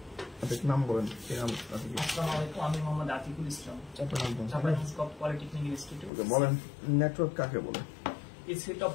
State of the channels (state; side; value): drops out; right; at 6.1 s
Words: নাম বলেন। আমি মোহাম্মদ আতিকুল ইসলাম, পলিটেকনিক ইনস্টিটিউট। বলেন নেটওয়ার্ক কাকে বলে? A